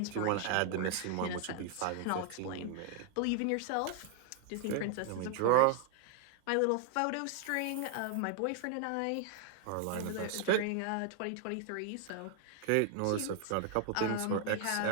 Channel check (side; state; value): both; different; correlation 0.00